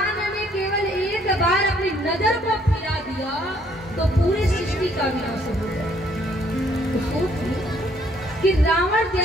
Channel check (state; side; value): normal; both; correlation 0.65